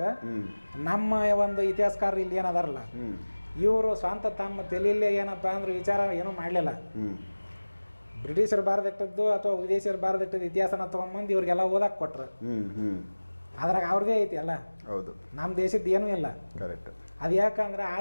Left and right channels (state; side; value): inverted; both; correlation -1.00